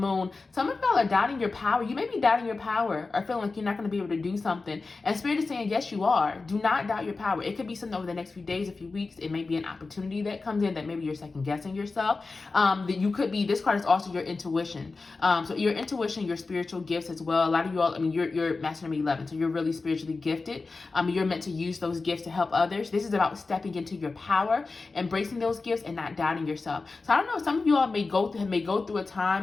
Some of y'all are doubting your power. You may be doubting your power or feeling like you're not going to be able to do something. And Spirit is saying, yes, you are. Do not doubt your power. It could be something over the next few days, a few weeks. It may be an opportunity that comes in that maybe you're second guessing yourself. That you could be. This card is also your intuition. So your intuition, your spiritual gifts as well. A lot of you all, you're Master number 11, so you're really spiritually gifted. You're meant to use those gifts to help others. This is about stepping into your power, embracing those gifts, and not doubting yourself. So I don't know. Some of you all may go through a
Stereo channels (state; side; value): quieter; right; 3.9 dB